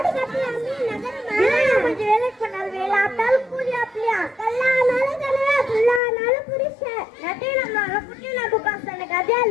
கட்டலாமே நகரமா கொஞ்சம் வேலைக்கு பண்ணாலும் வேலை ஆட்டாலும் கூலி அப்படியா கல்லானாலும் கலையா புல்லானாலும் புரிஷன் நட்டையினாலும் குட்டினாலும் சொன்ன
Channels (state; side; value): drops out; right; at 6.0 s